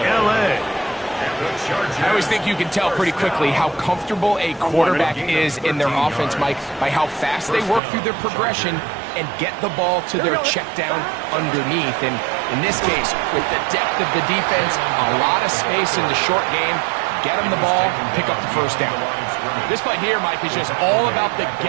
L.A. I always think you can tell pretty quickly how comfortable a quarterback is in their offense, Mike, by how fast they work through their progression and get the ball to their check down underneath. And in this case, with the depth of the defense, a lot of space in the short game, get them the ball, pick up the first down. This play here, Mike, is just all about the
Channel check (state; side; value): drops out; left; at 7.8 s